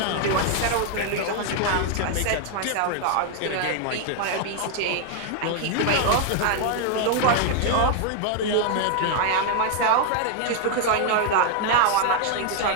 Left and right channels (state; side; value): different; both; correlation 0.00